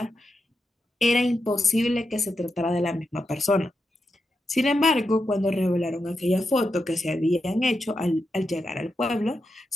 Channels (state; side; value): normal; both; correlation 0.86